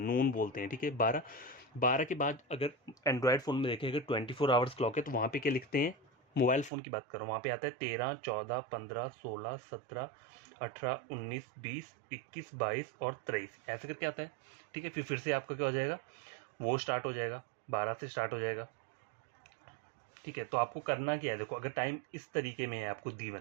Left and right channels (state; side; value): drops out; left; at 6.7 s